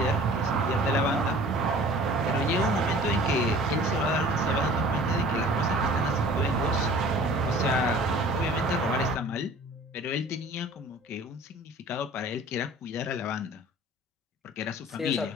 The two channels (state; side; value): normal; both; correlation 0.47